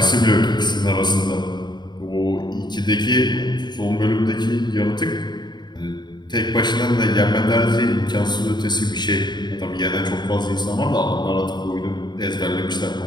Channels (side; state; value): right; late; 0.21 ms